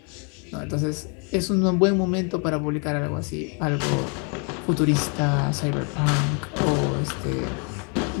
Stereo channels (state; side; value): quieter; right; 36.8 dB